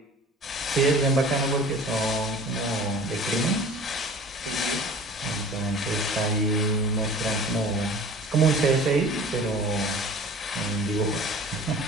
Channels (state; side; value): normal; both; correlation 0.43